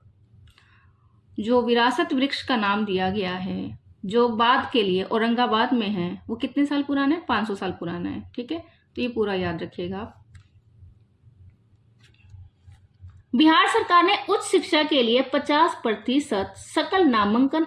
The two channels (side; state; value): both; identical; correlation 1.00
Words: जो विरासत वृक्ष का नाम दिया गया है, जो बाद के लिए औरंगाबाद में है, वो कितने साल पुराना है? 500 साल पुराना है। ठीक है, तो ये पूरा याद रखिएगा आप। बिहार सरकार ने उच्च शिक्षा के लिए 50% सकल नामांकन